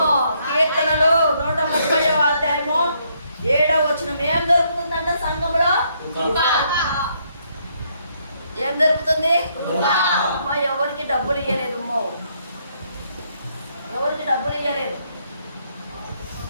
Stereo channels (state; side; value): inverted; both; correlation -0.72